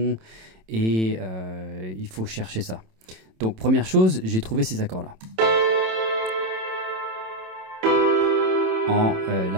et il faut chercher ça. Donc première chose, j'ai trouvé ces accords-là. En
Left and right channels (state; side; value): late; left; 27 ms